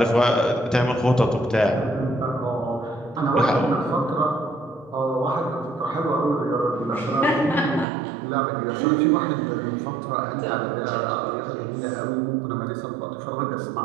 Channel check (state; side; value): drops out; left; at 7.9 s